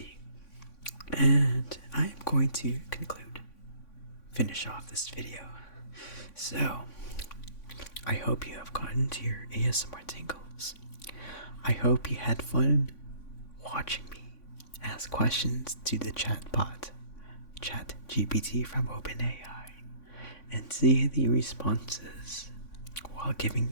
And I am going to finish off this video. So, I hope you have gotten to your ASMR tingles. I hope you had fun watching me ask questions to the chatbot, ChatGPT from OpenAI, and see the responses while giving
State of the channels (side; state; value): right; late; 3.5 ms